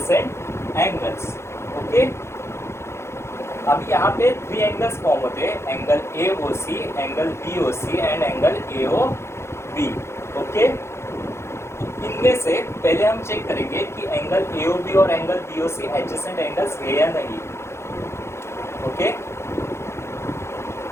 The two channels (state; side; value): late; right; 0.13 ms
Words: एंगल्स. ओके, अब यहाँ पे 3 एंगल्स फॉर्म होते हैं, angle A O C, angle B O C and angle A O B. Okay, इनमें से पहले हम चेक करेंगे कि एंगल ए ओ बी और angle B O C adjacent angles है या नहीं. Okay,